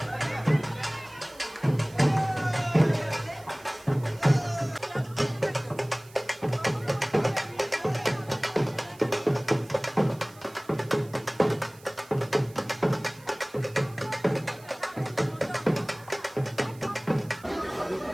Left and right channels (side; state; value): right; noise; hiss, 24 dB below the sound